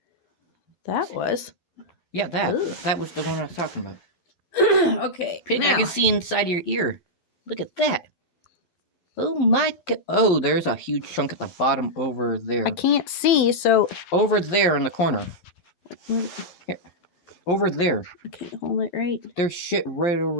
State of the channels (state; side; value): late; right; 11 ms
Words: That was? Yeah, that. Ugh. That was the one I was talking about. Okay. Pig, now. I can see inside your ear. Look at that. Oh my god. Oh, there's a huge chunk at the bottom over there. I can't see, so... Over there in the corner. Here. Over there. Okay, hold it right. There's shit right